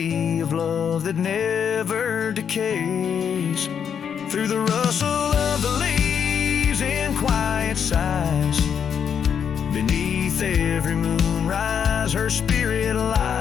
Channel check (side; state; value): right; quieter; 7.7 dB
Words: of love that never decays. Through the rustle of the leaves in quiet sighs, beneath every moonrise her spirit